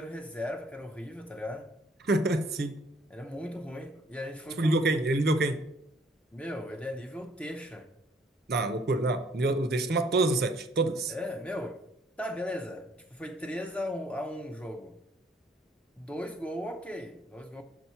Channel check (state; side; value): normal; both; correlation 0.63